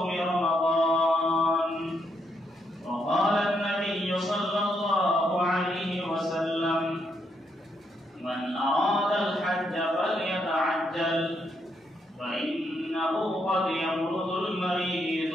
رمضان وقال النبي صلى الله عليه وسلم من أراد الحج فليتعجل فإنه قد يمرض المريض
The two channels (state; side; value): normal; both; correlation 0.78